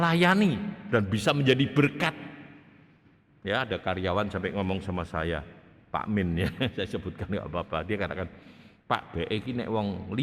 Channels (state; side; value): identical; both; correlation 1.00